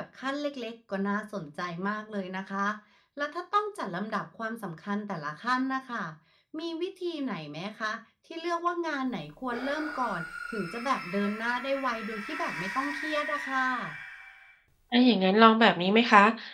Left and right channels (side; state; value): both; identical; correlation 1.00